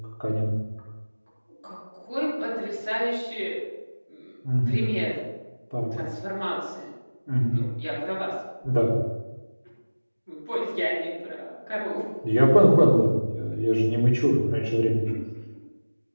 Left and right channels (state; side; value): inverted; both; correlation -1.00